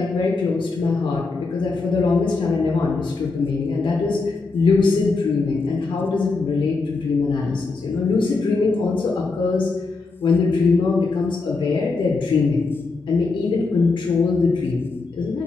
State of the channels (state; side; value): quieter; right; 3.9 dB